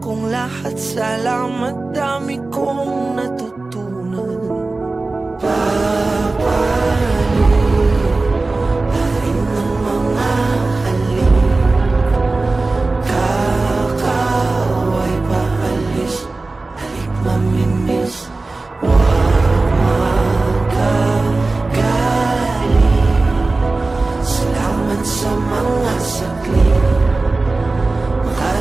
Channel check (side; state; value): left; quieter; 3.4 dB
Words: kong lahat, salamat, dami kong natutunan. Papalit ng mga halik, kakaway paalis, halik mamimiss, wag magagaling. Salamat sa mga saglit,